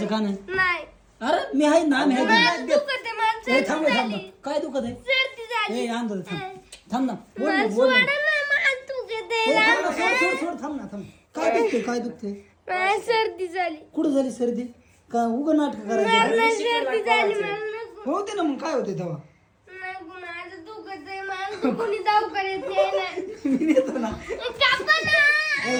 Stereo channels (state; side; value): identical; both; correlation 1.00